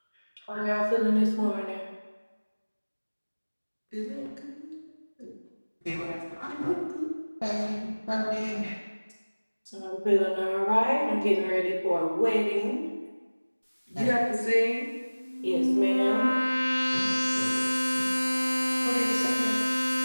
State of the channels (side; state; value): both; inverted; correlation -1.00